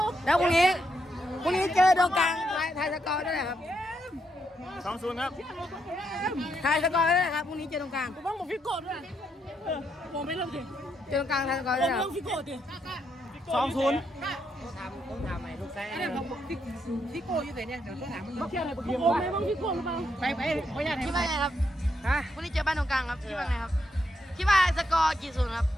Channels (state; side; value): normal; both; correlation 0.79